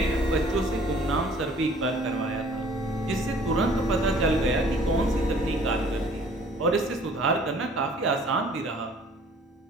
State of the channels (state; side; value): normal; both; correlation 0.54